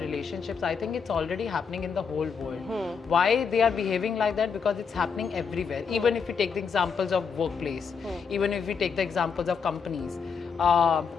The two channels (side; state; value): right; quieter; 6.0 dB